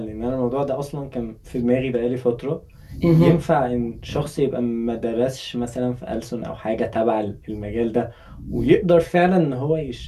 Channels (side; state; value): both; identical; correlation 1.00